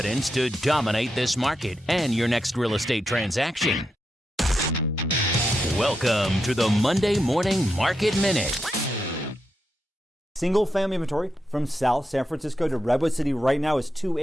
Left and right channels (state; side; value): normal; both; correlation 0.85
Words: to dominate this market and your next real estate transaction. Welcome to the Monday Morning Market Minute. Single family inventory from South San Francisco to Redwood City right now is